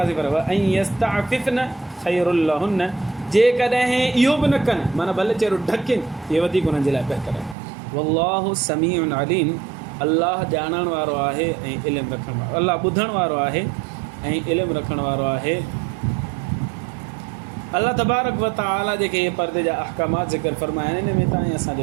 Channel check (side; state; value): left; drops out; at 7.6 s